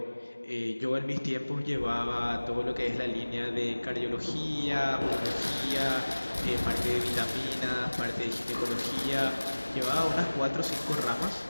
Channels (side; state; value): both; inverted; correlation -1.00